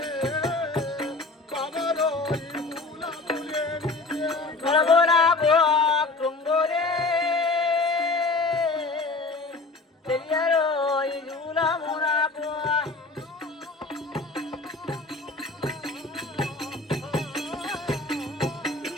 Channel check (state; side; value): quieter; right; 3.4 dB